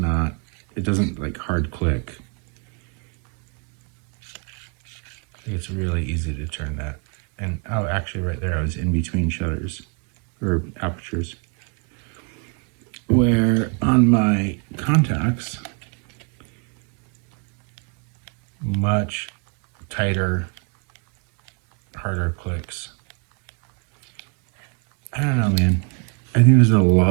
doesn't like hard click. It's really easy to turn that. And oh, actually right there, I was in between shutters or apertures. Where on my contacts, much tighter, harder clicks. I don't know, man. I think there's a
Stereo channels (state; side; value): quieter; left; 35.9 dB